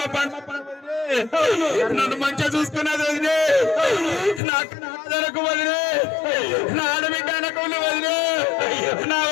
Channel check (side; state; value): right; drops out; at 4.4 s